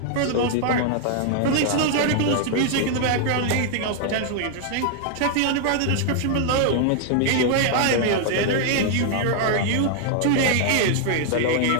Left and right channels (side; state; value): both; different; correlation 0.00